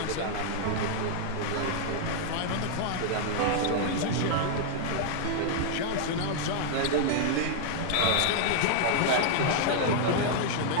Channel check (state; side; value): different; both; correlation -0.01